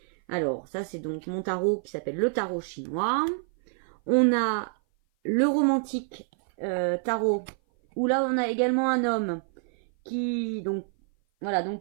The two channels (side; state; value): left; silent; 56 dB below the other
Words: Alors, ça c'est donc mon tarot qui s'appelle le tarot chinois. On a le romantique tarot, où là on a également un homme qui, donc